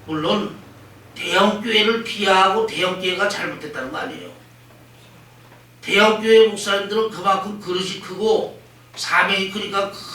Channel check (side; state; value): both; identical; correlation 1.00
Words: 물론 대형교회를 비하하고 대형교회가 잘못됐다는 거 아니에요. 대형교회 목사님들은 그만큼 그릇이 크고 사명이 크니까